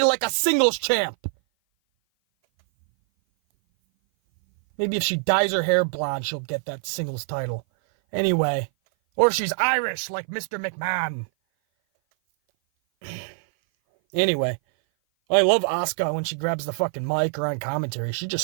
like a singles champ. Maybe if she dyes her hair blonde, she'll get that singles title. Anyway, Or she's Irish like Mr. McMahon. Anyway, I love Asuka when she grabs the fucking mic or on commentary.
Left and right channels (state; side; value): silent; left; 57 dB below the other